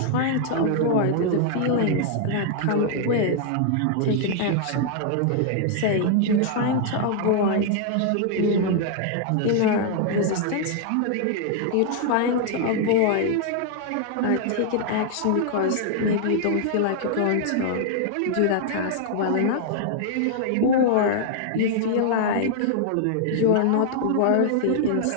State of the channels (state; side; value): different; both; correlation 0.00